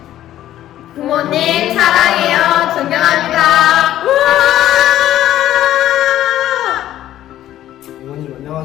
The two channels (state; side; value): quieter; right; 12.9 dB